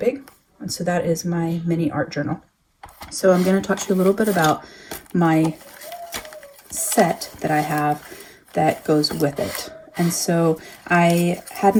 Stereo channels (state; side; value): identical; both; correlation 1.00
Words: And so that is my mini art journal. So I'm going to talk to you a little bit about my set that I have that goes with it. And so I